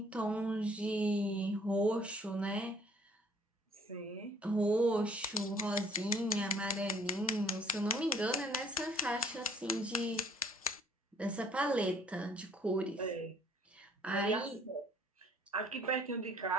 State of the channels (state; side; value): normal; both; correlation 0.58